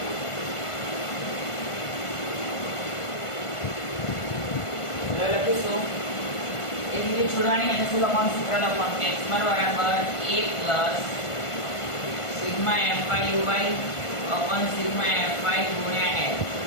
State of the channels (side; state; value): right; late; 1.5 ms